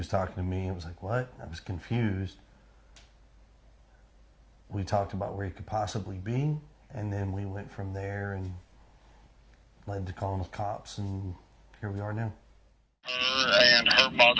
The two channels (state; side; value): identical; both; correlation 1.00